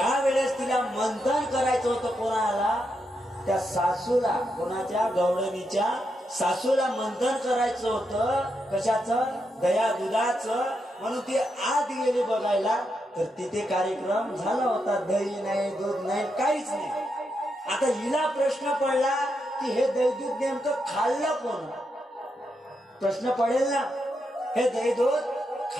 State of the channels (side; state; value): both; normal; correlation 0.83